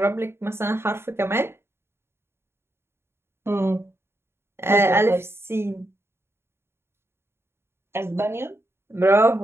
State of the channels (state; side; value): late; left; 0.12 ms